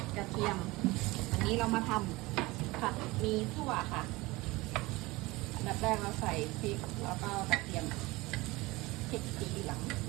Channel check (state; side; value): quieter; left; 21.5 dB